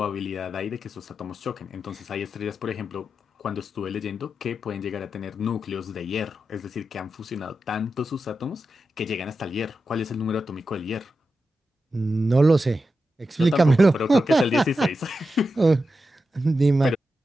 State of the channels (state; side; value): normal; both; correlation 0.89